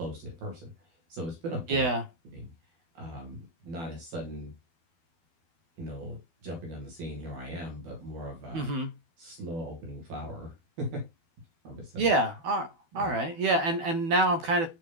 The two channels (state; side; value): late; left; 12 ms